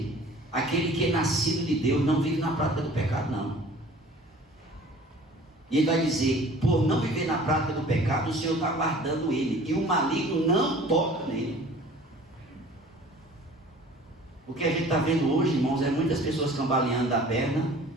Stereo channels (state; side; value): normal; both; correlation 0.47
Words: aquele que é nascido de Deus não vive na prática do pecado, não. E ele vai dizer: por não viver na prática do pecado, o Senhor está guardando ele, e o maligno não toca nele. O que a gente está vendo hoje, irmãos, é muitas pessoas cambaleando da perna,